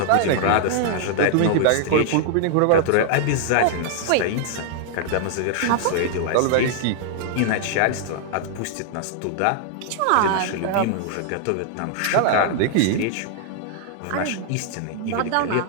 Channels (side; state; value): both; different; correlation -0.01